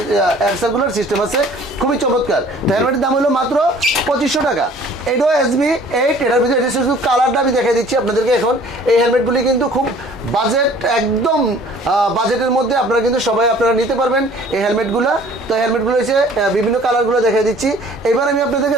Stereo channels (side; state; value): both; normal; correlation 0.51